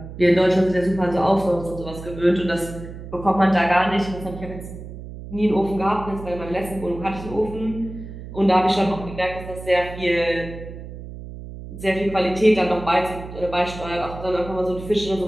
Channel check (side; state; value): right; noise; hum, 12 dB below the sound